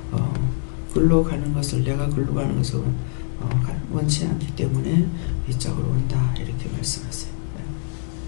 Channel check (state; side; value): silent; right; digital silence